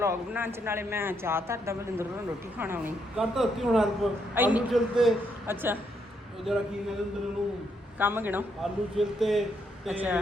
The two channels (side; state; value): both; normal; correlation 0.76